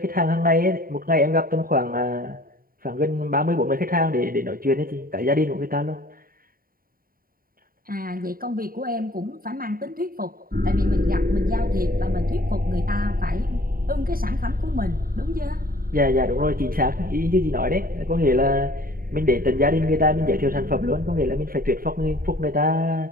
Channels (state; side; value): late; left; 0.42 ms